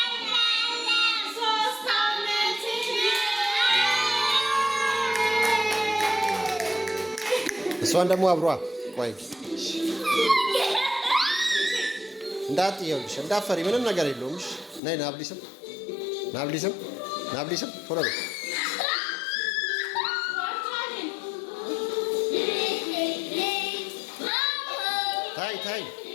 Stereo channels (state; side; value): drops out; right; at 14.8 s